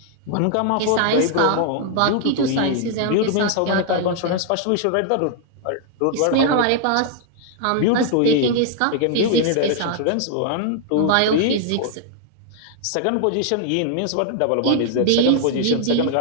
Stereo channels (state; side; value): different; both; correlation 0.00